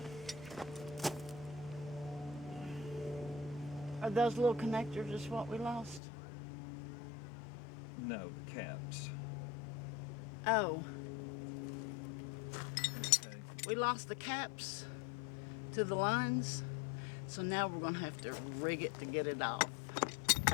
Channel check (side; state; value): right; drops out; at 6.0 s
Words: Are those little connectors just what we lost? No, the caps. Oh, Okay. we lost the caps to the lines, So now we're gonna have to rig it to get it off.